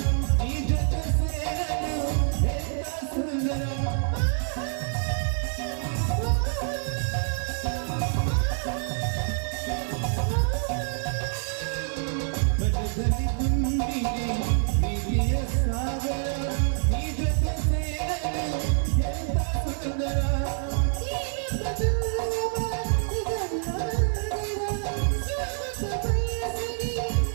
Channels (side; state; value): left; silent; digital silence